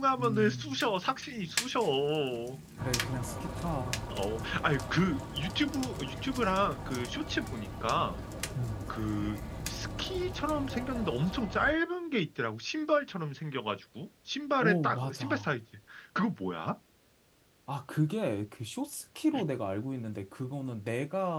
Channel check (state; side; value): identical; both; correlation 1.00